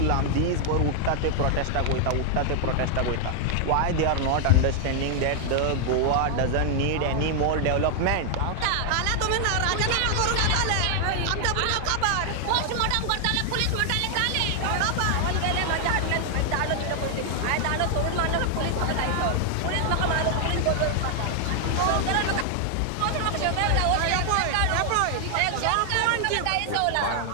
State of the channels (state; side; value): different; both; correlation 0.00